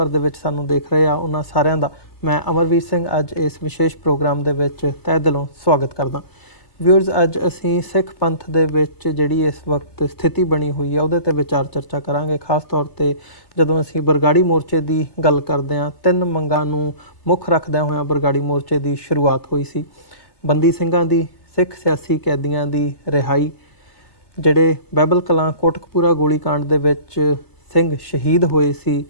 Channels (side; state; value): right; late; 3.3 ms